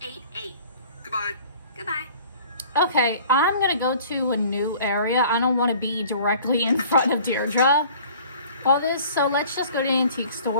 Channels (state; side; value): inverted; both; correlation -0.50